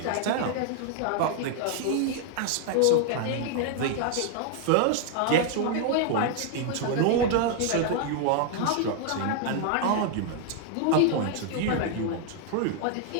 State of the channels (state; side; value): different; both; correlation 0.00